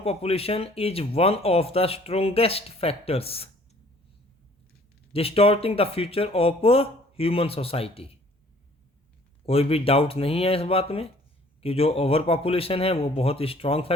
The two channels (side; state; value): both; normal; correlation 0.55